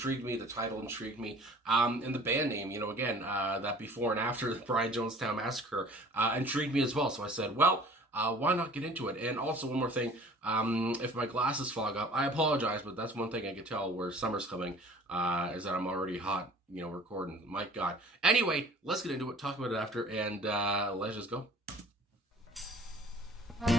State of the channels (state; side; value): normal; both; correlation 0.49